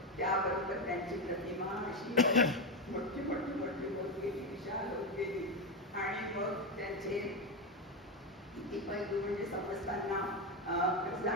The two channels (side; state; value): both; normal; correlation 0.11